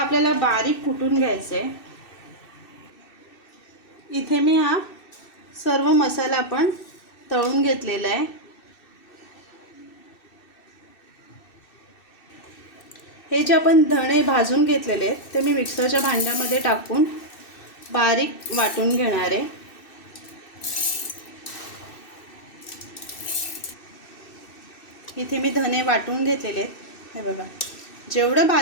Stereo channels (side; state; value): right; late; 2.6 ms